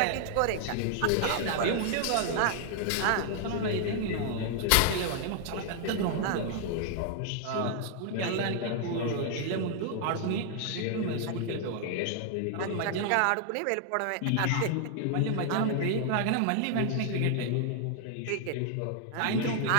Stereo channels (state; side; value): different; both; correlation 0.00